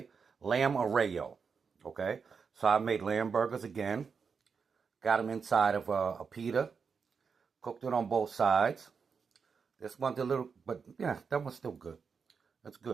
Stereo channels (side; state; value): left; quieter; 5.7 dB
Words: Lamb arreo. Okay? So I made lamb burgers again. Got them inside of a pita. Cooked it on both sides. This one's a little, but yeah, that one's still good. That's